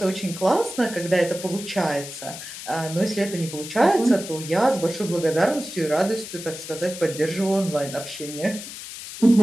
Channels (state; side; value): noise; left; hiss, 11 dB below the sound